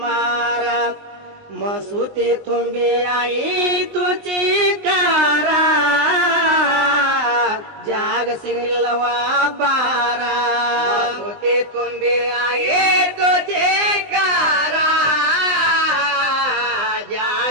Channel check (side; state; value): left; late; 19 ms